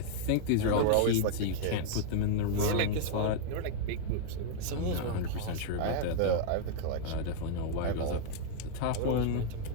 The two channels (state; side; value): different; both; correlation -0.01